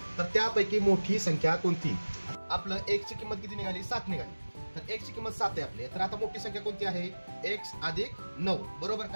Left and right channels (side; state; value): both; inverted; correlation -1.00